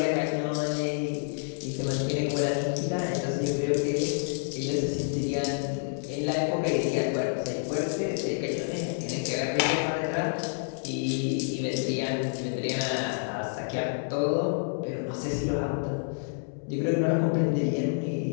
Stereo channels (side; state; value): right; silent; 59 dB below the other